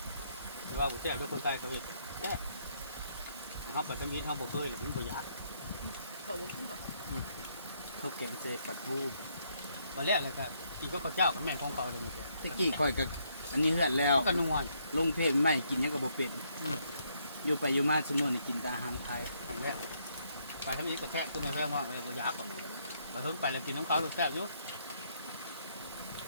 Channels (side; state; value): both; inverted; correlation -0.73